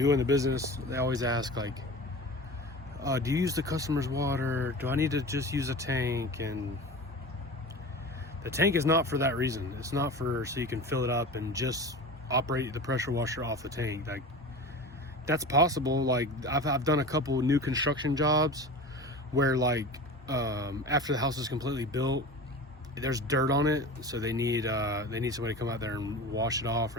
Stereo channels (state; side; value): normal; both; correlation 0.33